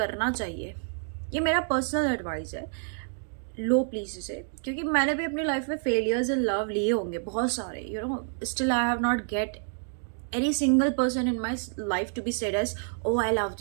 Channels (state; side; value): silent; left; digital silence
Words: चाहिए। ये मेरा personal advice है। लो please इसे, क्योंकि मैंने भी अपनी लाइफ में फेलियर्स इन लव लिए होंगे बहुत सारे, still I have not gate any single person in my life to be said as, oh, I love